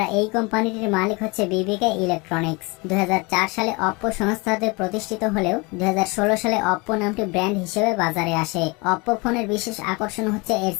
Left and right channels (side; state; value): right; quieter; 27.1 dB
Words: এই কোম্পানিটির মালিক হচ্ছে বিবিকে ইলেকট্রনিক্স। 2004 সালে অপ্পো সংস্থাতে প্রতিষ্ঠিত হলেও 2016 সালে অপ্পো নামটি ব্র্যান্ড হিসেবে বাজারে আসে। অপ্পো ফোনের বিশেষ আকর্ষণ হচ্ছে এর